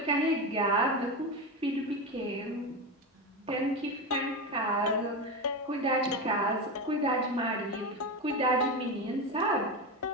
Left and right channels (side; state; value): both; normal; correlation 0.18